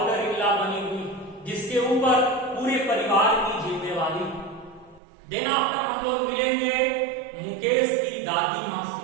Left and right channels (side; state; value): left; drops out; at 5.0 s